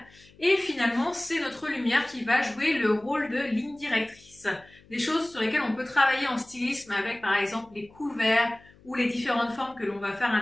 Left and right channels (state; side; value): noise; left; hum, 27 dB below the sound